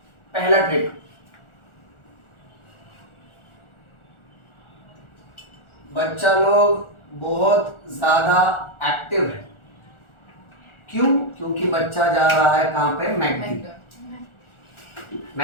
पहला ट्रिक, बच्चा लोग बहुत ज्यादा एक्टिव है, क्यों? क्योंकि बच्चा जा रहा है कहां पे? मैकडी।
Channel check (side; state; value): right; late; 1.4 ms